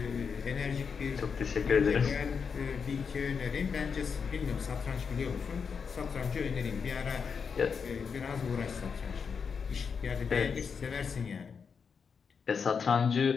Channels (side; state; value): right; quieter; 6.0 dB